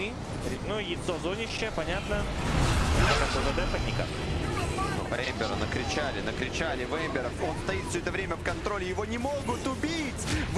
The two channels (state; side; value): identical; both; correlation 1.00